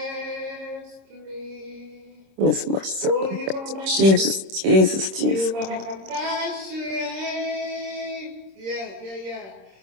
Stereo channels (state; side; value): late; left; 26 ms